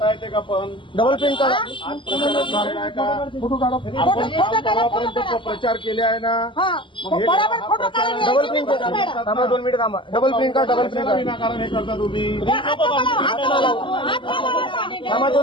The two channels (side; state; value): right; late; 0.24 ms